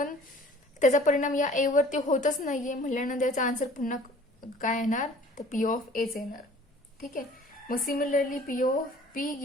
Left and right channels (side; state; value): both; normal; correlation 0.50